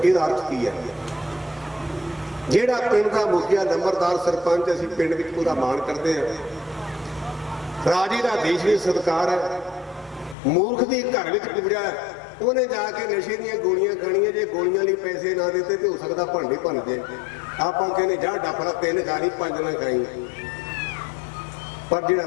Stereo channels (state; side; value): drops out; right; at 10.4 s